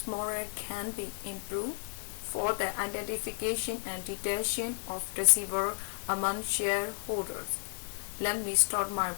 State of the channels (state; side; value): silent; right; digital silence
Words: model can be improved for the identification and detection of deceiver among shareholders. Let me start my